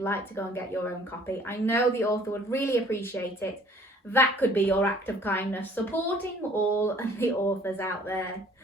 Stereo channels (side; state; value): both; normal; correlation 0.55